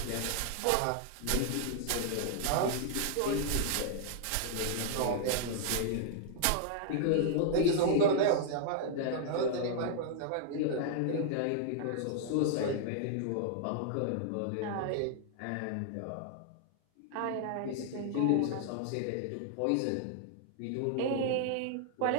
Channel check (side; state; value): both; different; correlation -0.01